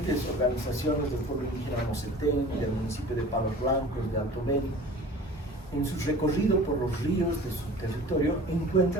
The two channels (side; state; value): both; normal; correlation 0.43